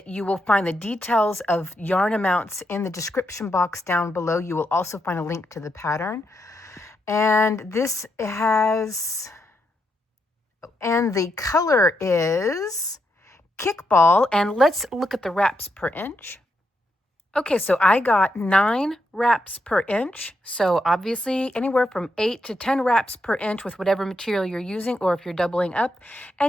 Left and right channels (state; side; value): normal; both; correlation 0.81